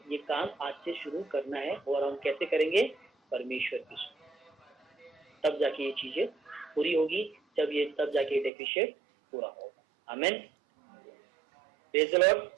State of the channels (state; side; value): drops out; left; at 8.5 s